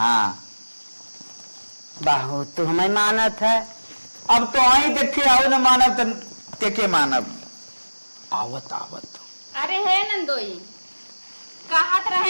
बहुत तो हमें मानत है अब तो आई देखे आओ न मानव तो के मानव आवत आवत अरे है नंदोई कहत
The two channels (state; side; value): inverted; both; correlation -1.00